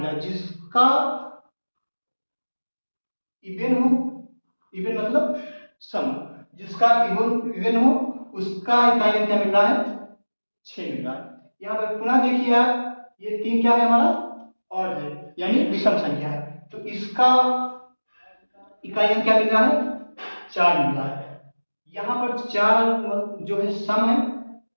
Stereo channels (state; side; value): inverted; both; correlation -1.00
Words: जिसका इवन हो, इवन मतलब सम, जिसका इवन इवन हो उसका इकाई अंक क्या मिल रहा है, 6 मिल रहा है। यहाँ पर पुनः देखिए आप, ये 3 क्या है हमारा, और है, यानी विषम संख्या है, तो इसका इकाई अंक क्या मिल रहा है, 4 मिल रहा है। यहाँ पर 4 जो है सम है,